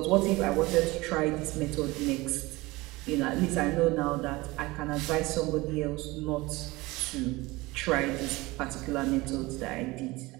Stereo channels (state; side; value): quieter; left; 21.5 dB